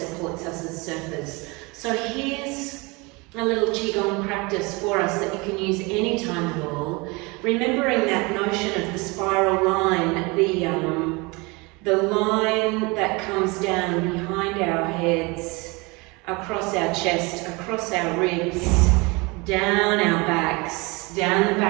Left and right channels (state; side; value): quieter; left; 26.5 dB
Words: us as surfers. So here's a little Qigong practice for us that you can use any time at all. Remembering that notion of the spiral line, the line that comes down behind our heads, across our chest, across our ribs, down our backs, down the